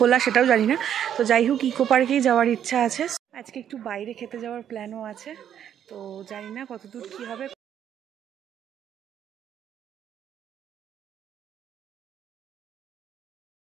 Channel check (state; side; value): quieter; left; 9.6 dB